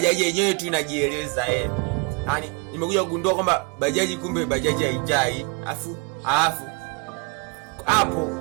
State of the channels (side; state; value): left; quieter; 31.7 dB